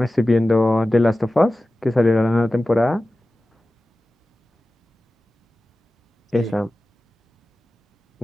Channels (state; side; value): normal; both; correlation 0.95